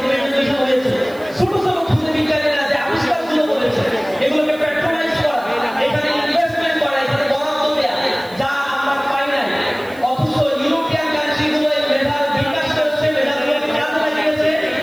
প্রেজেন্টেশন হয়েছে, ছোট ছোট খুদে বিজ্ঞানীরা যে আবিষ্কারগুলো করেছে এগুলোকে প্যাট্রোনাইজ করা, এখানে ইনভেস্টমেন্ট করা, এখানে বরাদ্দ দেয়া, যা আমরা পাই নাই। অথচ ইউরোপিয়ান কান্ট্রিগুলো এই মেধার বিকাশ করেছে, মেধাগুলোকে কাজে লাগিয়েছে,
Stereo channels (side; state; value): right; noise; hiss, 24 dB below the sound